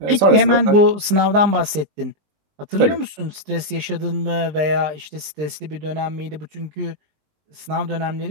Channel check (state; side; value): late; left; 20 ms